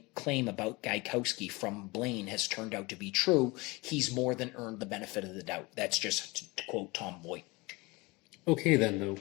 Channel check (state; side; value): quieter; right; 24.5 dB